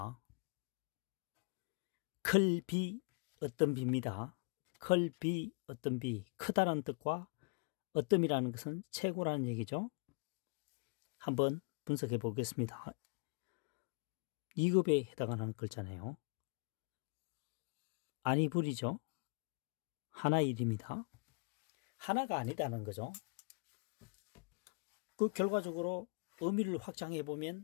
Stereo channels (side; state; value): right; quieter; 33.4 dB